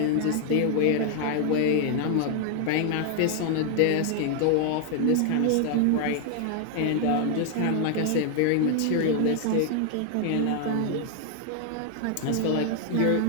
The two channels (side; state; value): both; different; correlation 0.00